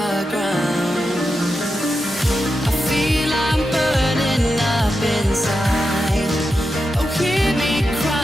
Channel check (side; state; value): both; normal; correlation 0.88